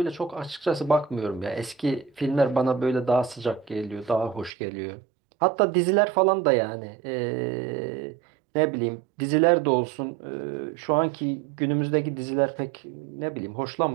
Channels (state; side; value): drops out; left; at 4.5 s